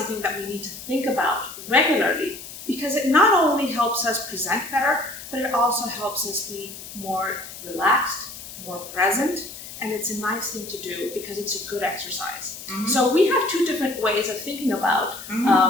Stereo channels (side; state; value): left; noise; hiss, 13 dB below the sound